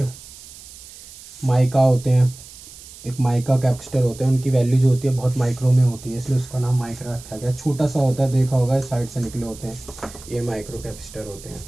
माइका होते हैं, एक माइका कैपेसिटर होते हैं, उनकी वैल्यू जो होती है बहुत माइक्रो में होती है, इसलिए उसका नाम माइक्रो रखा गया। छोटा सा होता है, देखा होगा साइड से निकले होते हैं, ये माइक्रो कैपेसिटर होते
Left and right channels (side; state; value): right; noise; hiss, 18 dB below the sound